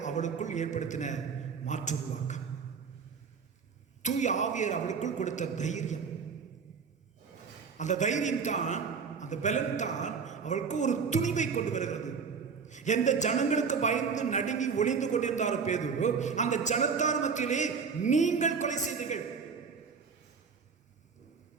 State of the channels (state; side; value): quieter; left; 5.7 dB